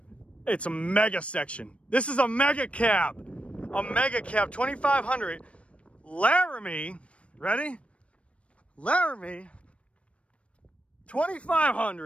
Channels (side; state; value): right; late; 0.062 ms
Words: It's a mega section. This is a mega cab. A mega cab 2500 Laramie. Ready? Laramie